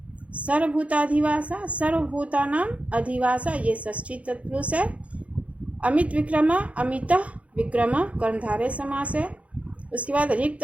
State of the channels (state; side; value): late; left; 0.065 ms